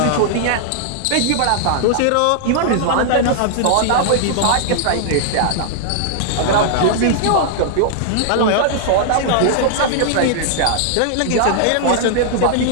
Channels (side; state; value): both; different; correlation -0.01